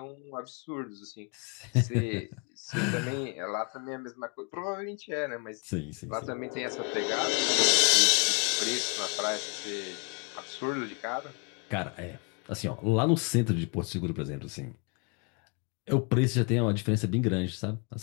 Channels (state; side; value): quieter; right; 34.3 dB